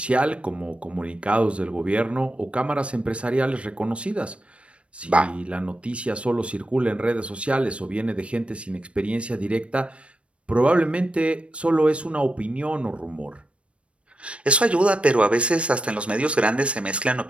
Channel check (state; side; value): late; left; 0.061 ms